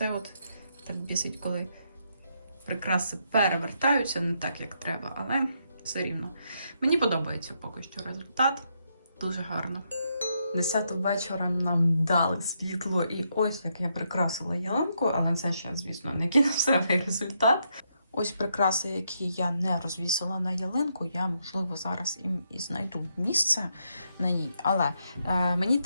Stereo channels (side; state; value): both; inverted; correlation -0.78